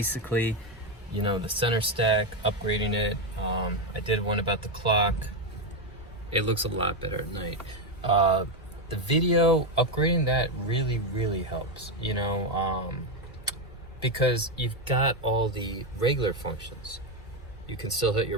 you know, the center stack, upgrading it. I did one about the clock. It looks a lot better at night. The video, upgrading that really helps, you know, because you've got all the regular functions. You can still hit your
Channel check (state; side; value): normal; both; correlation 0.08